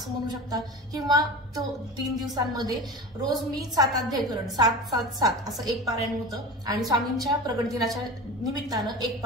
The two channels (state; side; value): normal; both; correlation 0.32